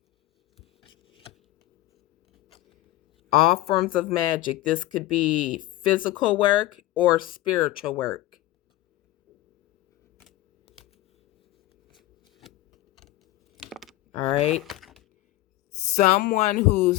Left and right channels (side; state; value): right; quieter; 16.4 dB